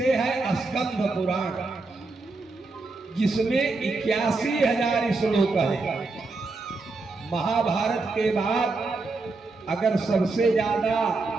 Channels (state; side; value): quieter; left; 3.6 dB